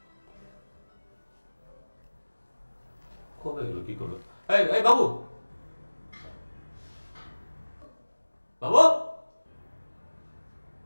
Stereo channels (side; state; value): both; inverted; correlation -1.00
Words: কবে গেল, কি করলো? এই এই বাবু, বাবু,